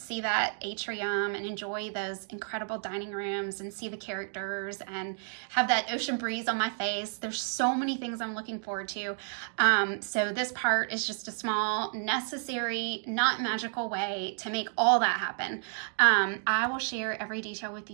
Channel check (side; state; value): left; silent; 57 dB below the other